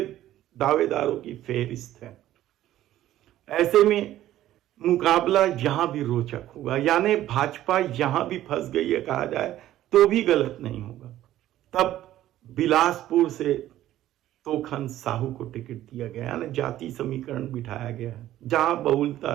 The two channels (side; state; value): left; quieter; 13.5 dB